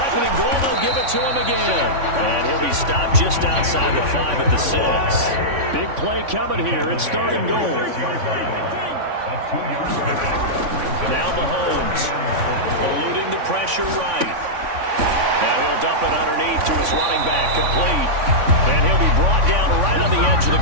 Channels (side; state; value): left; late; 3.5 ms